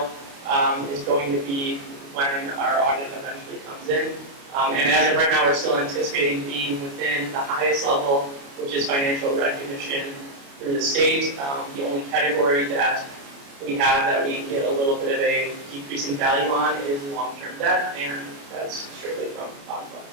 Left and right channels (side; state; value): left; late; 29 ms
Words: is going to be when our audit eventually comes in. And as of right now, we're still anticipating being within the highest level, which is financial recognition through the state. The only category that we have that we get a little bit of a decrease in value on is long-term debt, and that's strictly from bond funds.